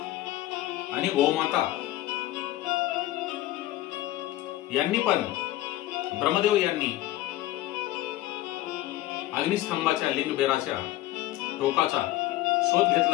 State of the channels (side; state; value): right; quieter; 15.8 dB